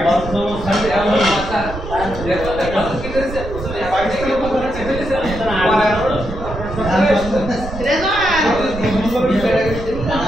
বন্ধ সাথে আমার মাথা দেখো দেখো কি করেছে উসলে পাকিস্তানের উপর চেপে দিয়েছে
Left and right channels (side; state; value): right; noise; rumble, 9 dB below the sound